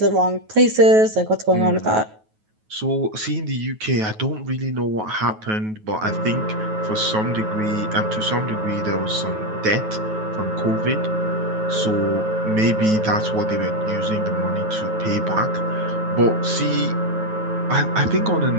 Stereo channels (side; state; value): left; late; 9.3 ms